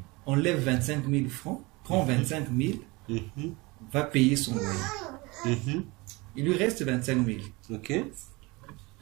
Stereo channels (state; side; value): quieter; left; 24.5 dB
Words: enlève 25 000 francs, prend 25 000, va payer son loyer. Il lui reste 25 000.